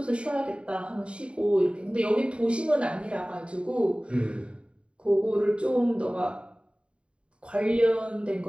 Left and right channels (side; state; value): left; late; 0.056 ms